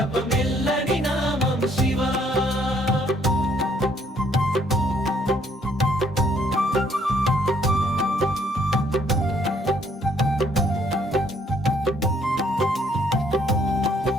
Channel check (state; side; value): normal; both; correlation 0.66